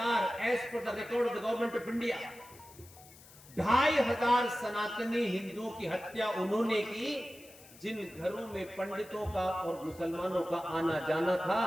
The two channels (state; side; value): noise; left; hiss, 21 dB below the sound